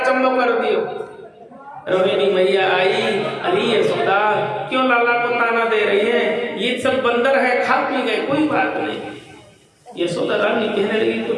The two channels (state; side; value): identical; both; correlation 1.00